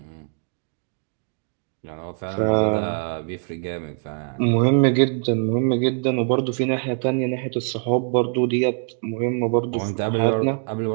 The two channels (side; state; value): left; silent; 63 dB below the other